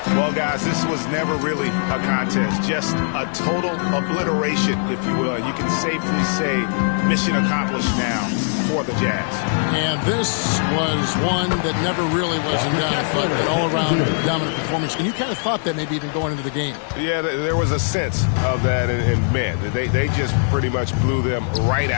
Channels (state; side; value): silent; right; 60 dB below the other